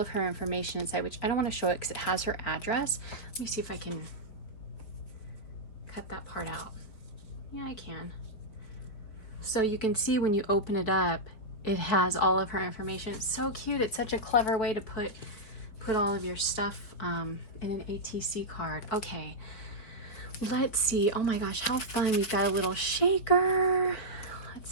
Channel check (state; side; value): late; right; 5.0 ms